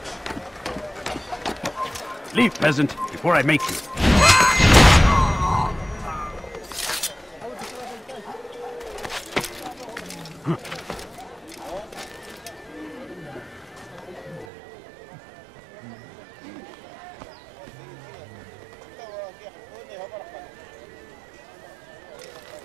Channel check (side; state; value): left; drops out; at 14.5 s